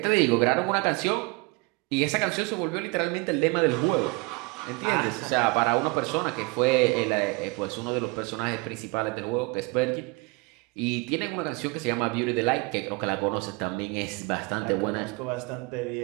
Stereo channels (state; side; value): quieter; left; 26.5 dB